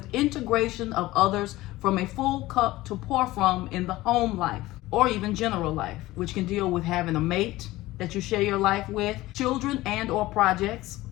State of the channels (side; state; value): right; quieter; 17.8 dB